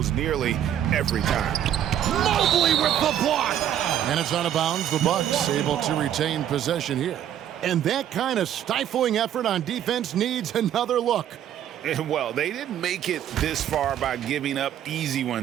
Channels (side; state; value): left; quieter; 10.6 dB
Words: nearly every time. Mobley with the block. And it's out of bounds. The Bucks able to retain possession here. And that kind of stifling effort on defense needs another look. And well, they didn't make it this far by giving up easy